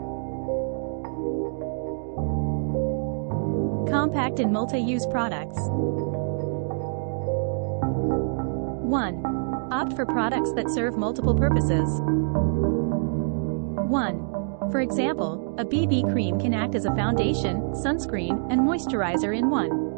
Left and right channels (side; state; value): left; silent; digital silence